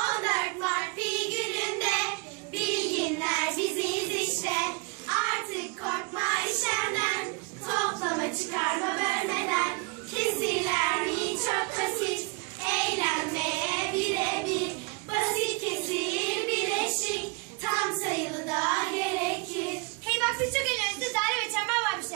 Mart pi gününde bilginler biziz işte. Artık korkma işlemden, toplama çıkarma bölmeden. Kesirler mi çok basit, eğlenmeye birebir. Basit kesir bileşik, tam sayılı da gerekir. Hey bak siz çok eğleniyorsunuz. Daire ve çember var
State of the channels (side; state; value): left; quieter; 30.1 dB